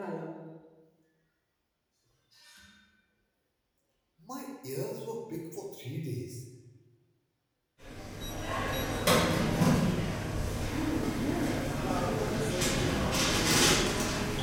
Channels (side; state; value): both; identical; correlation 1.00